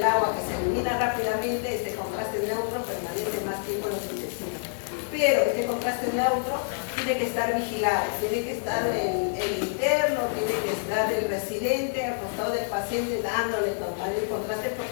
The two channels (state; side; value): silent; right; digital silence